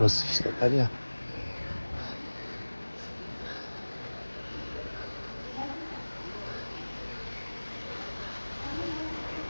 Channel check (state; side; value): inverted; both; correlation -1.00